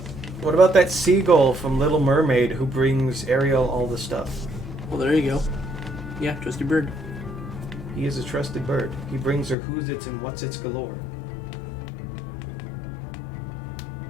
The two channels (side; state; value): right; drops out; at 9.6 s